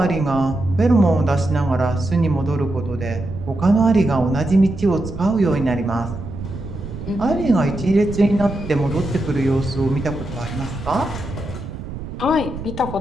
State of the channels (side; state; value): right; noise; rumble, 9 dB below the sound